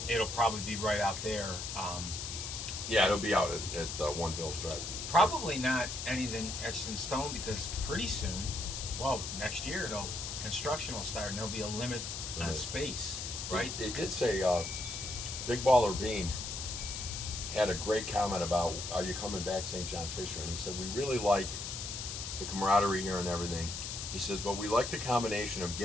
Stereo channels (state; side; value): noise; left; hiss, 5 dB below the sound